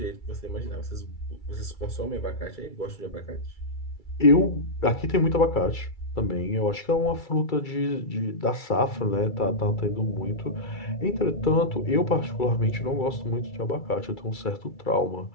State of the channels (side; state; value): right; late; 2.3 ms